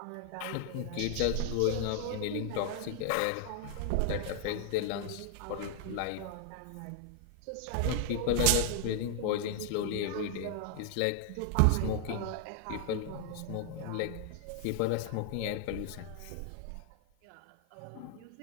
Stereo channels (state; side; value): different; both; correlation 0.00